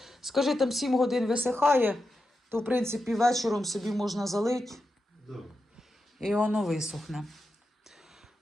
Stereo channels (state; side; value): normal; both; correlation 0.89